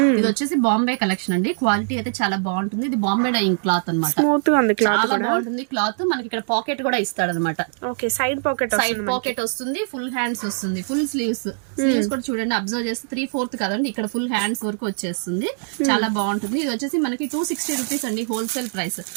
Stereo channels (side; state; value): left; silent; digital silence